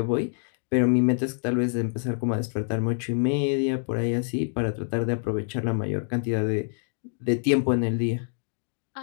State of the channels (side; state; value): right; silent; digital silence